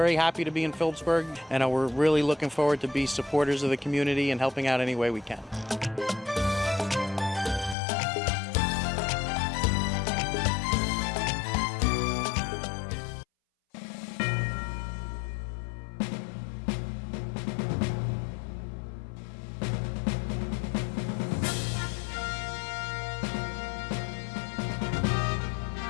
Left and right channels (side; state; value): right; drops out; at 7.8 s